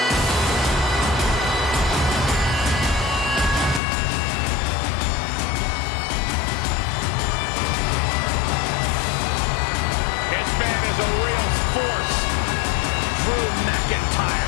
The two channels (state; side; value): drops out; right; at 3.8 s